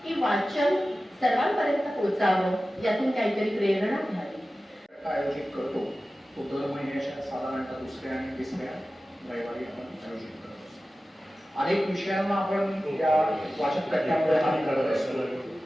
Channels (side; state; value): both; normal; correlation 0.95